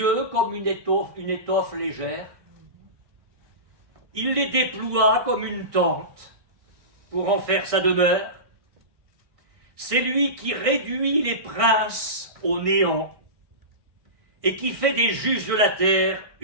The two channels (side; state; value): left; late; 1.6 ms